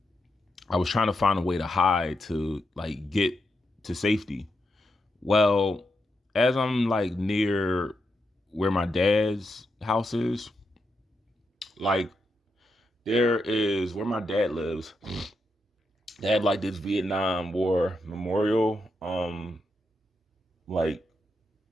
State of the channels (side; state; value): both; normal; correlation 0.84